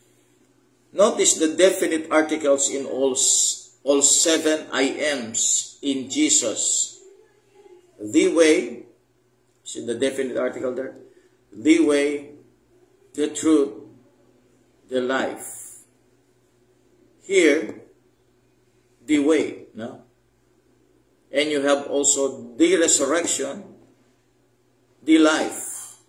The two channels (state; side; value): identical; both; correlation 1.00